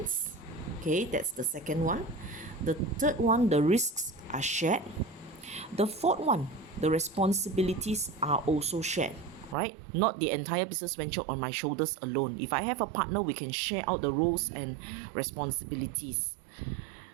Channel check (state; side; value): drops out; left; at 9.6 s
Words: Okay, that's the second one. The third one, the risks are shared. The fourth one, the responsibilities are also shared, right? Not the entire business venture on my shoulders alone. If I have a partner, we can share out the roles and responsibilities.